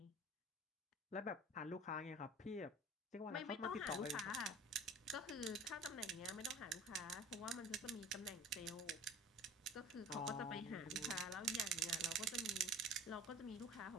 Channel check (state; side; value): normal; both; correlation 0.42